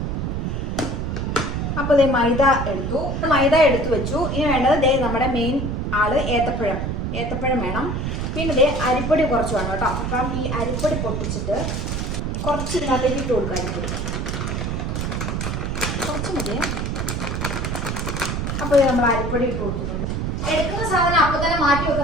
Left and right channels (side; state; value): right; noise; rumble, 2 dB below the sound